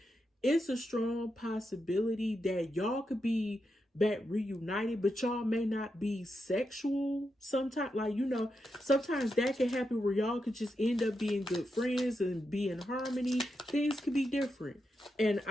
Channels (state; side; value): normal; both; correlation 0.86